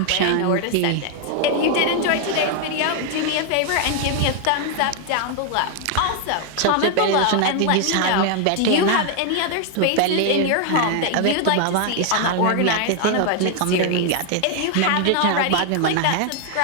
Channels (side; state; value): both; different; correlation 0.00